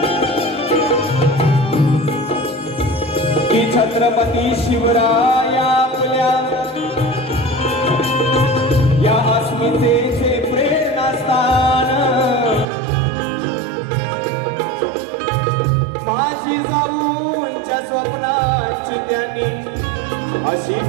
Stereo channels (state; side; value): drops out; left; at 12.7 s